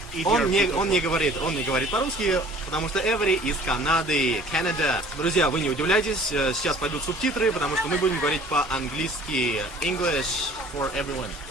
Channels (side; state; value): both; normal; correlation 0.50